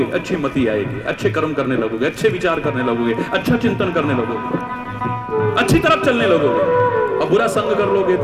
अच्छी मति आएगी, अच्छे कर्म करने लगोगे, अच्छे विचार करने लगोगे, अच्छा चिंतन करने लगोगे, अच्छी तरफ चलने लगोगे। और बुरा संग कर लोगे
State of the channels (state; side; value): identical; both; correlation 1.00